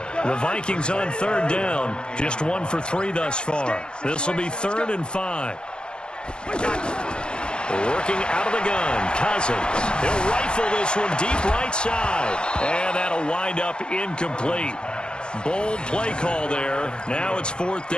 The Vikings on 3rd down. Just 1 for 3 thus far. This will be 3rd and 5. Working out of the gun, Cousins. He'll rifle this one deep right side. And that'll wind up incomplete. Bold play call there. Now it's 4th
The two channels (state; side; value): late; right; 0.050 ms